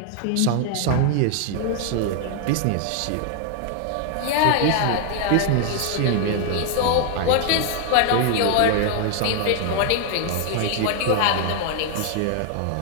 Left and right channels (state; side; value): different; both; correlation 0.00